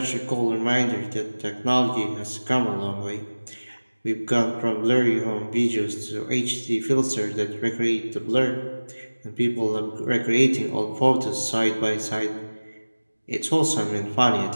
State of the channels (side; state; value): both; inverted; correlation -1.00